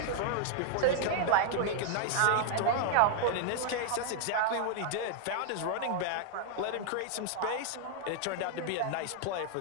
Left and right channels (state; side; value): different; both; correlation 0.00